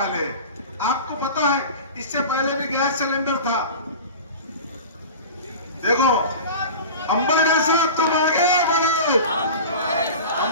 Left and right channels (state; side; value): inverted; both; correlation -0.34